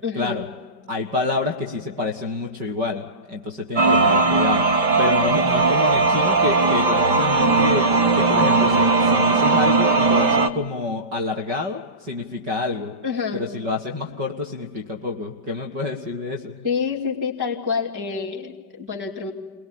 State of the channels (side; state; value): left; late; 5.1 ms